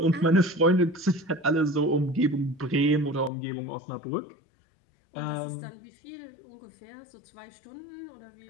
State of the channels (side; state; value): right; drops out; at 3.3 s